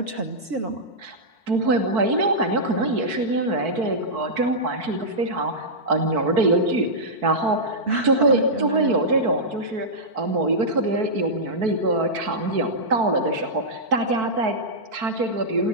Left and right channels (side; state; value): left; late; 4.5 ms